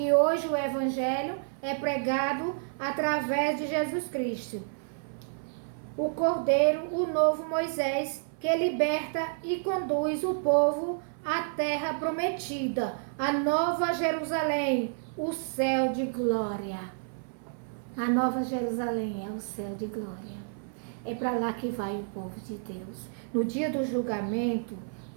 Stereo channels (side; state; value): left; silent; 58 dB below the other